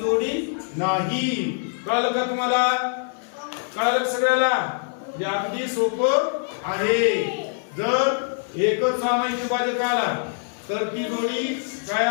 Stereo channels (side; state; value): right; silent; 62 dB below the other